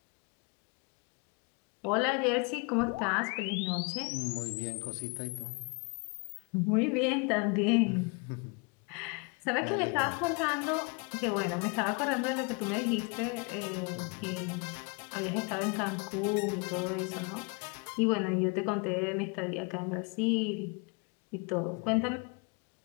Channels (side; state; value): right; quieter; 33.1 dB